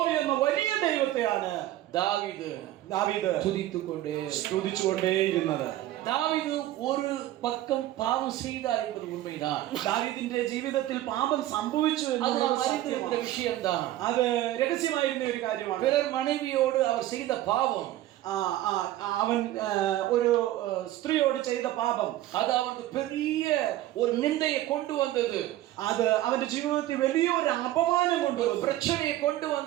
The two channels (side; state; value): left; quieter; 14.5 dB